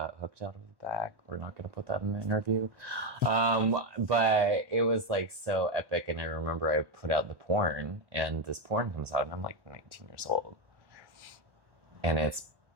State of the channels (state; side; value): late; left; 1.1 ms